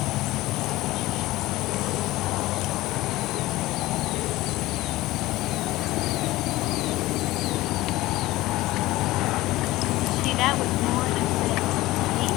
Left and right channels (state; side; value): quieter; right; 18.1 dB